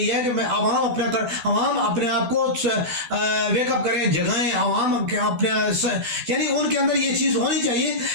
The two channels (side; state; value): left; late; 12 ms